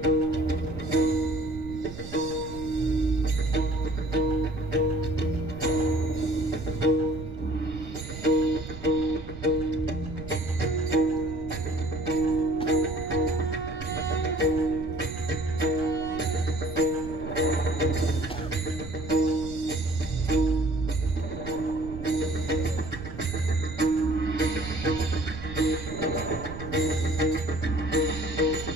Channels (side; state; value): right; noise; rumble, 11 dB below the sound